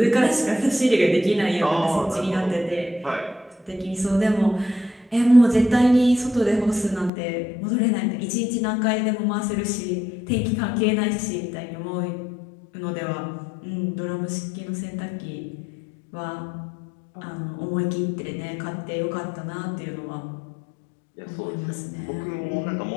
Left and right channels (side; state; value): right; drops out; at 7.1 s